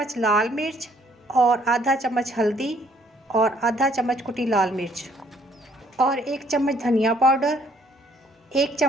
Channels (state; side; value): normal; both; correlation 0.64